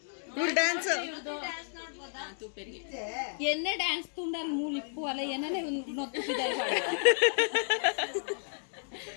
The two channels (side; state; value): right; silent; digital silence